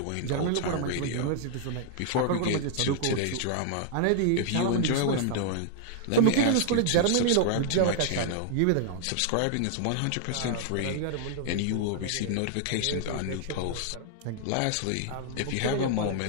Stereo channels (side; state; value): both; different; correlation 0.00